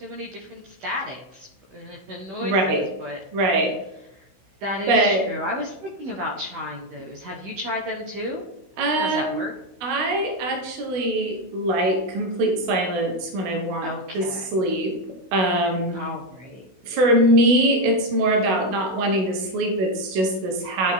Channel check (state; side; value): late; left; 16 ms